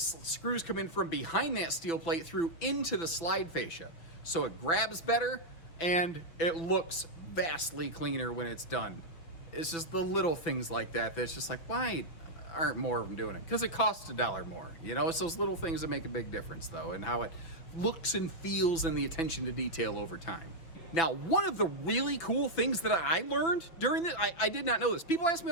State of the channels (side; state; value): right; late; 6.0 ms